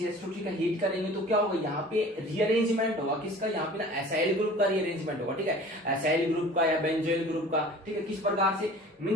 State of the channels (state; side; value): normal; both; correlation 0.44